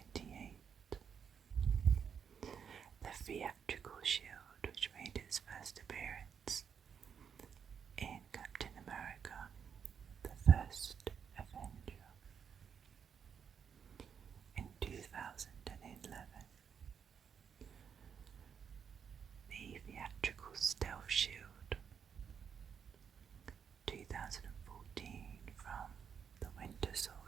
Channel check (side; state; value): left; quieter; 7.2 dB